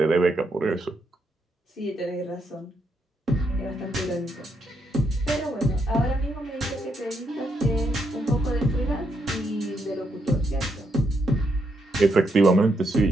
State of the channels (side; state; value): both; normal; correlation 0.78